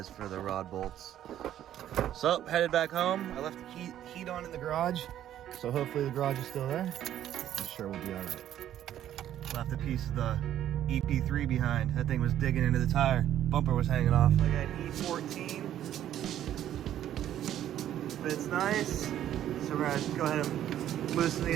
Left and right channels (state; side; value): quieter; left; 11.5 dB